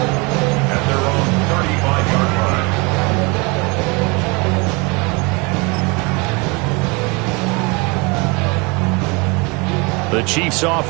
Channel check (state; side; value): quieter; left; 28.3 dB